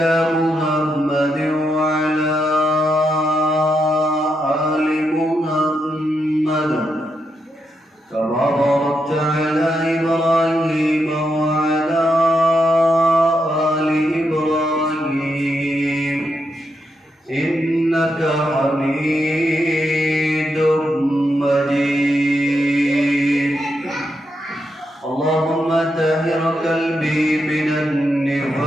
محمد وعلى آل محمد كما باركت على إبراهيم وعلى آل إبراهيم إنك حميد مجيد. اللهم طهر قلبي من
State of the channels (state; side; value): normal; both; correlation 0.83